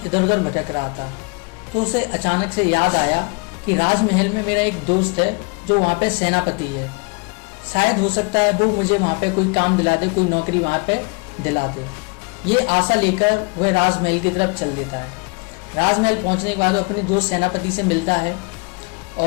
उधर भटक रहा था। तो उसे अचानक से याद आया कि राजमहल में मेरा एक दोस्त है जो वहाँ पे सेनापति है, शायद हो सकता है वो मुझे वहाँ पे कोई काम दिला दे, कोई नौकरी वहाँ पे दिला दे। ये आशा लेकर वह राजमहल की तरफ चल देता है। राजमहल पहुँचने के बाद वो अपने दोस्त सेनापति से मिलता है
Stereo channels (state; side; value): quieter; right; 30.8 dB